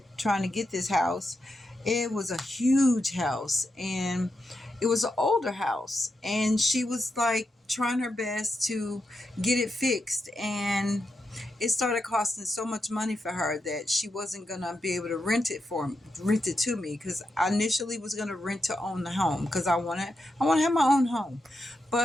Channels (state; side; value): normal; both; correlation 0.86